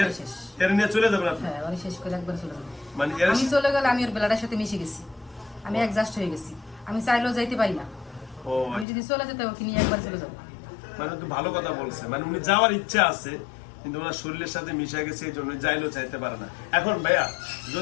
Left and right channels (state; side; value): drops out; right; at 8.8 s